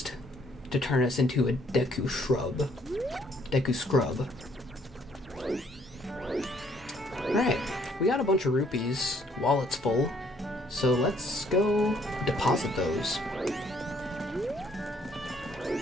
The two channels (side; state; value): both; normal; correlation 0.65